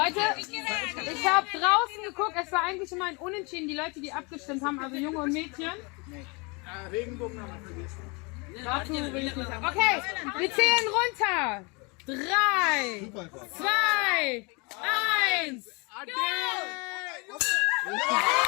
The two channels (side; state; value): right; quieter; 29.8 dB